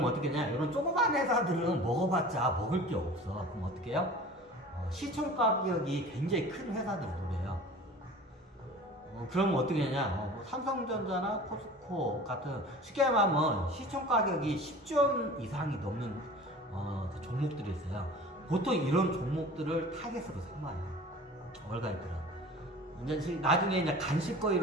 어떻게 하냐, 이런 조그만 회사들은 먹어봤자 먹을 게 없어. 그럼 어떻게 해요? 시총 가격이 굉장히 큰 회사들을 노려요. 그러면 어떻게 하냐, 삼성전자나 포스코 같은 쉽게 말하면 시총 가격이 10조 이상이 넘는 그 종목들이 있어요. 보통 이런 종목들을 타겟으로 삼아요, 월가애들은. 이제 나중에 이제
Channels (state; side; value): normal; both; correlation 0.41